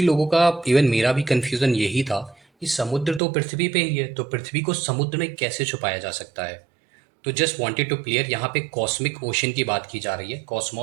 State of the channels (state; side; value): drops out; left; at 3.2 s